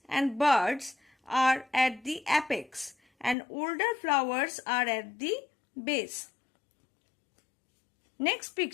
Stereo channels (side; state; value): right; drops out; at 3.4 s